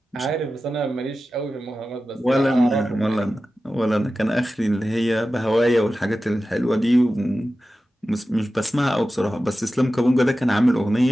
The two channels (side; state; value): both; normal; correlation 0.94